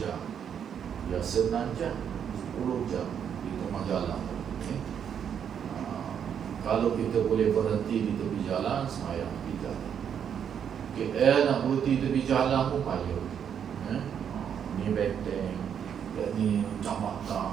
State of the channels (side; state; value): left; quieter; 8.2 dB